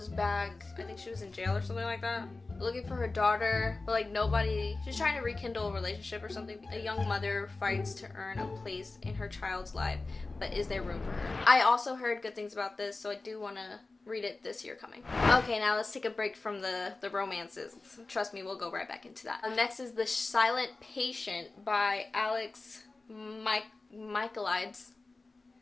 back, I think she was in jail or something like that, looking for her daughter, but like nobody, she's trying to rekindle a relationship or something. A young mother fights to earn a place in her child's life, but is there room for her? I also heard good things about this, so I do want to read it this year coming. Okay, now let's take a break from the romances. Trust me, we'll go right back into that. Next is The Silent Patient by Alex Michaelides.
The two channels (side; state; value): right; quieter; 3.5 dB